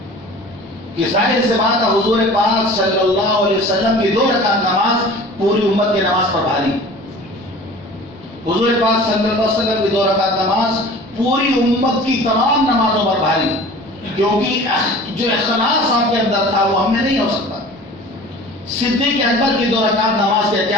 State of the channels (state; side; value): normal; both; correlation 0.42